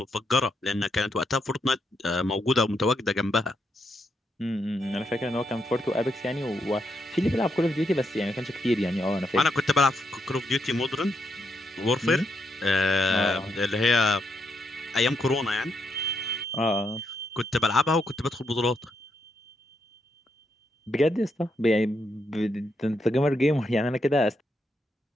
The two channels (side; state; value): both; normal; correlation 0.80